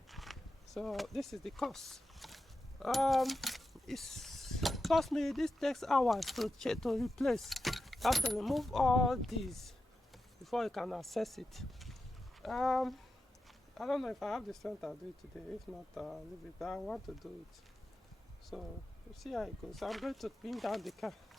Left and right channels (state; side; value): normal; both; correlation 0.90